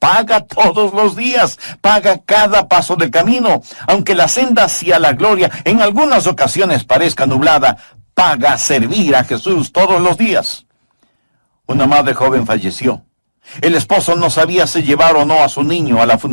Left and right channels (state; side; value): inverted; both; correlation -1.00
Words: todos los días, paga cada paso del camino. Aunque la senda hacia la gloria en algunas ocasiones parezca nublada, paga servir a Jesús todos los días. Una madre joven falleció. El esposo no sabía si llevar o no a su niño a la